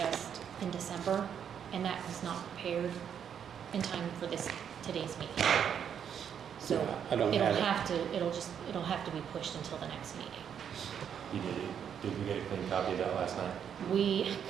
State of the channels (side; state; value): left; quieter; 8.3 dB